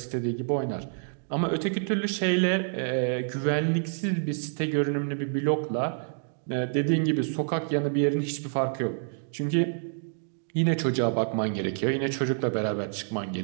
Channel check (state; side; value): silent; left; digital silence